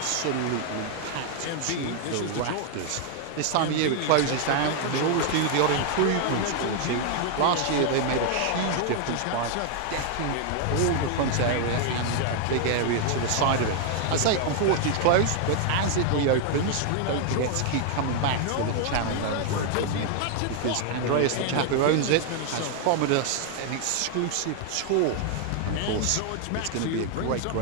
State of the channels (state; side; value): different; both; correlation 0.00